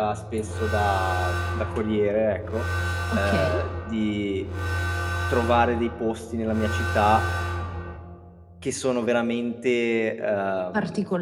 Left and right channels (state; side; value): identical; both; correlation 1.00